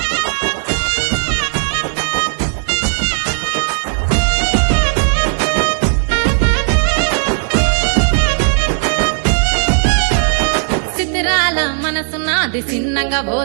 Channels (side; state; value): left; silent; 58 dB below the other